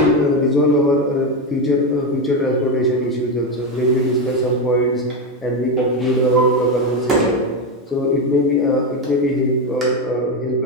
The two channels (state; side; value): normal; both; correlation 0.11